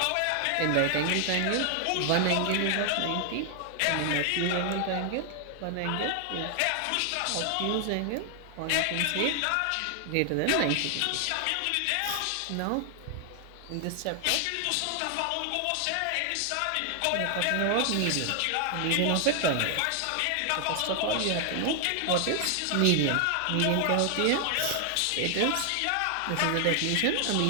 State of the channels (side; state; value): both; different; correlation 0.00